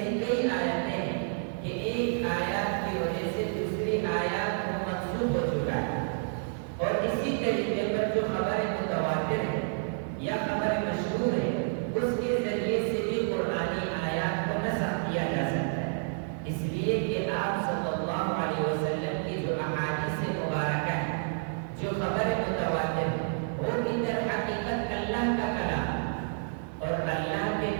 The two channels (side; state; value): left; silent; 57 dB below the other